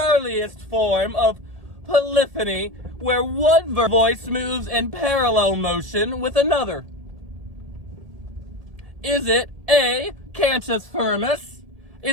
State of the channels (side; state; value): left; late; 1.8 ms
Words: form of polyphony where one voice moves in parallel motion with another? Is it A, cantus firmus?